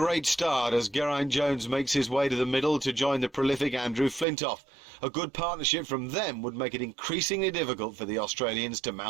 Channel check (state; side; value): drops out; left; at 4.2 s